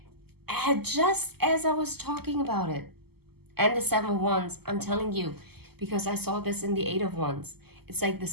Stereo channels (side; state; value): left; late; 0.96 ms